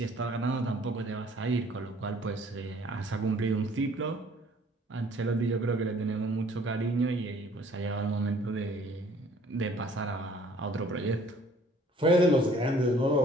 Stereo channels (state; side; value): normal; both; correlation 0.56